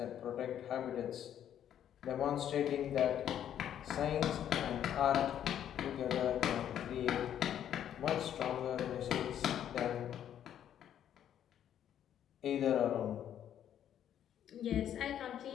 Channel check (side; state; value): right; quieter; 10.2 dB